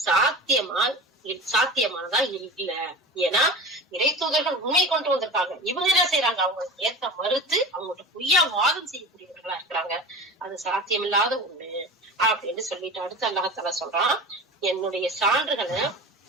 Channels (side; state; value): both; normal; correlation 0.34